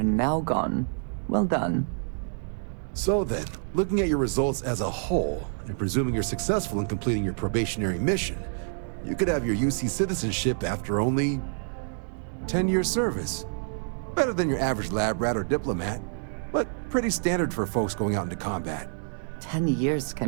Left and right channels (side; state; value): left; silent; digital silence